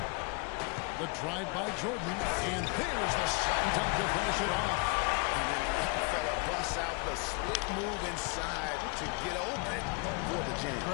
The drive by Jordan, and there's the shot dunk to finish it off. And then the young fella busts out the slick move inside to get open for the jam.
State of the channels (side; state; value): right; quieter; 32.3 dB